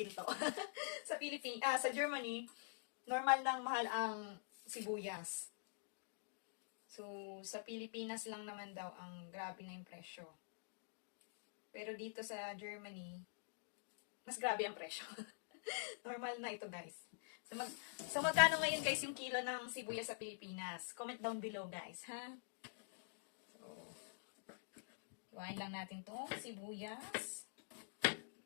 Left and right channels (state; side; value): silent; right; digital silence